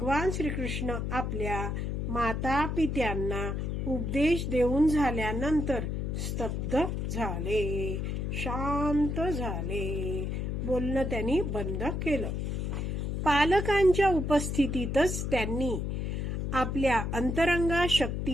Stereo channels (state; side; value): noise; left; hum, 2 dB below the sound